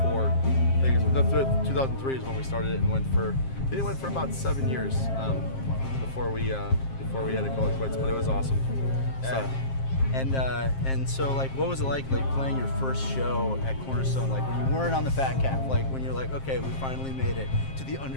I think it was 2003 is when we started it, and went for about 7 years before we had to call it quits. But it was awesome. Yeah. And so, like, what was it like playing your first show at Cornerstone, like when you weren't on the Fat Cat, like when you're like, okay, we finally made it to the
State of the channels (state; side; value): late; right; 7.5 ms